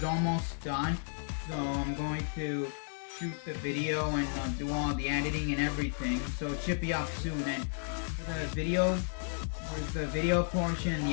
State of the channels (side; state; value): right; silent; digital silence